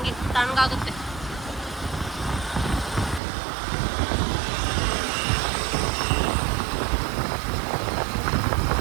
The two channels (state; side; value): drops out; left; at 3.2 s